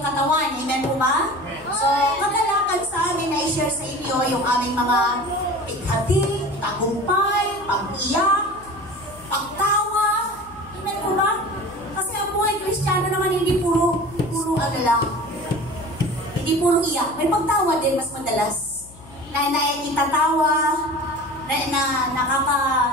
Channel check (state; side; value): noise; left; hum, 21 dB below the sound